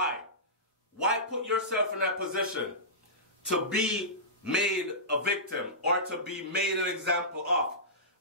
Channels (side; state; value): both; normal; correlation -0.19